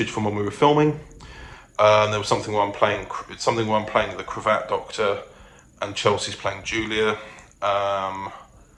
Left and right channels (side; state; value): both; identical; correlation 1.00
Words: from when we were filming. There was something where I'm playing the Cravat Doctor, and Chelsea's playing Julia,